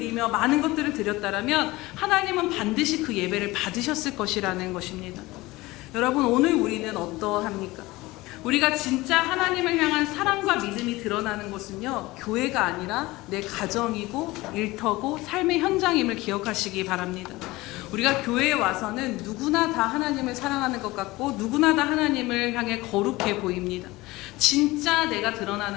많은 것들을 드렸다라면 하나님은 반드시 그 예배를 받으셨을 것이라는 것입니다. 여러분, 오늘 우리는 어떠합니까? 우리가 진짜 하나님을 향한 사랑과 믿음이 드러나는 곳은요, 교회가 아니라 내 가정이고 일터고 삶의 현장임을 기억하시기 바랍니다. 우리가 교회에 와서는 누구나 다 하나님을 사랑하는 것 같고 누구나 다 하나님을 향해 거룩해 보입니다. 진짜 내가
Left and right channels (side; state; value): right; quieter; 20.2 dB